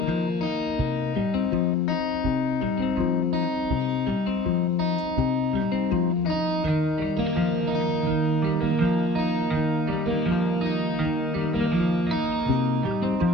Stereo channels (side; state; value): both; normal; correlation 0.49